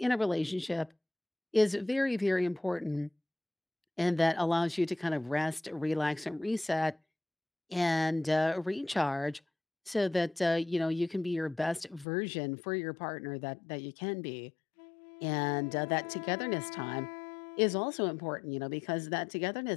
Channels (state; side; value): drops out; right; at 12.1 s